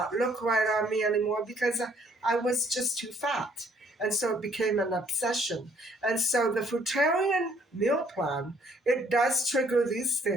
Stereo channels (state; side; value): normal; both; correlation 0.63